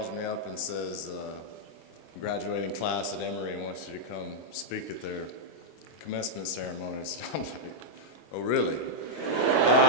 me up and says, graduating class at Emory wants you to come speak at their commencement ceremonies. I'm like, oh, really?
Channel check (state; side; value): late; right; 26 ms